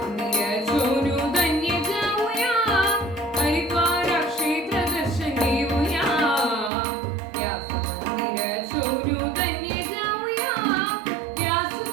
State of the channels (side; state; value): left; drops out; at 6.7 s